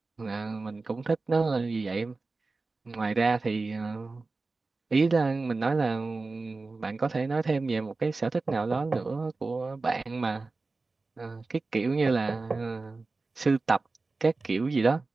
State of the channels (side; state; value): left; quieter; 3.7 dB